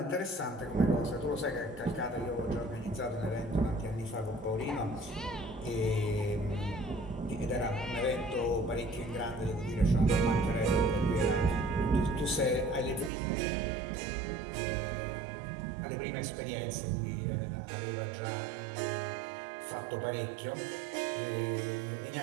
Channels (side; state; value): left; drops out; at 13.1 s